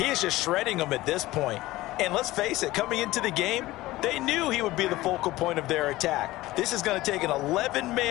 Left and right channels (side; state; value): right; quieter; 17.8 dB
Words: is just shredding them at this point. And let's face it, coming into the game, they knew he would be the focal point of their attack. This is going to take an